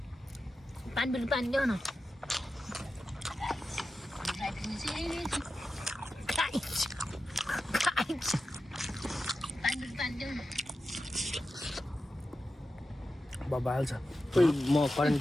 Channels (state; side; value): normal; both; correlation 0.92